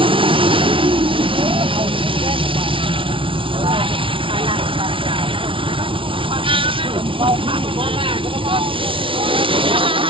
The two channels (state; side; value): late; left; 0.25 ms